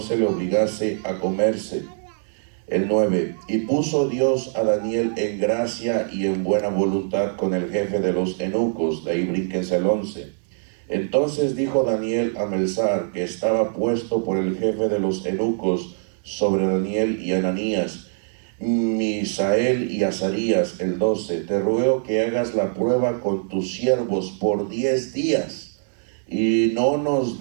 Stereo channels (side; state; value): left; silent; digital silence